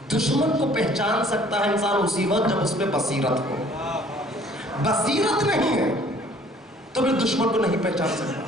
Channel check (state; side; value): normal; both; correlation 0.55